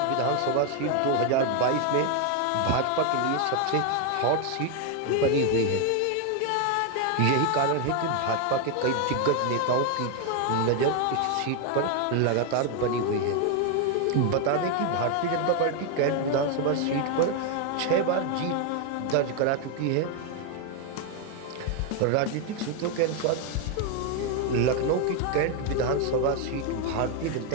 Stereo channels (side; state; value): both; different; correlation 0.01